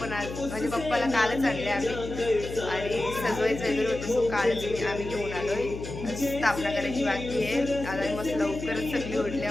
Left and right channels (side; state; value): left; noise; hum, 9 dB below the sound